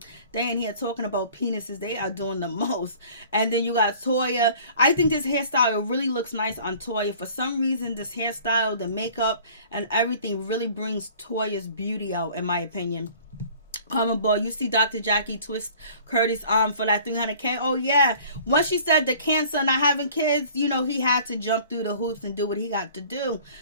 ain't here talking about penises. They are doing the most. And then you got Toya. I think this hairstyle really looks nice on Toya. For some reason, this hairstyle, the makeup, and everything really brings Toya's beauty out, in my opinion. Comment boy, you see Dr. Jackie twist Curtis' arm for that 300K. Oh yeah, once she said the cancer not having kids, he had to jump through the hoops and do what he got to do.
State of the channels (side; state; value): both; inverted; correlation -0.50